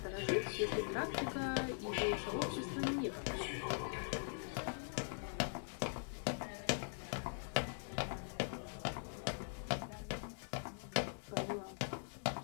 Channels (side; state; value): right; silent; digital silence